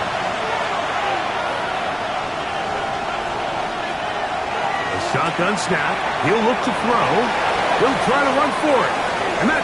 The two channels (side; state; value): both; identical; correlation 1.00